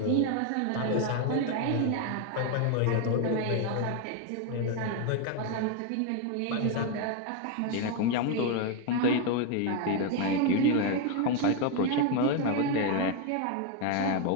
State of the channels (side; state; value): both; different; correlation 0.01